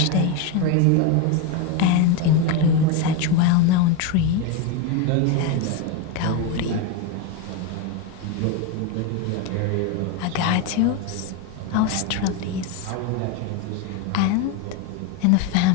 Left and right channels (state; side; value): different; both; correlation 0.03